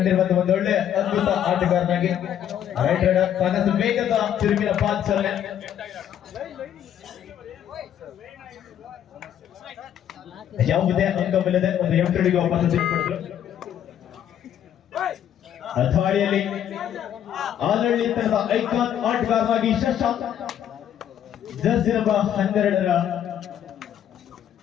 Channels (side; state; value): right; quieter; 10.1 dB